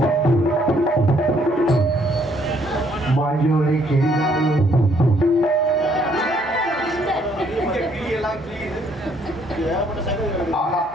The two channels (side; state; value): both; normal; correlation 0.67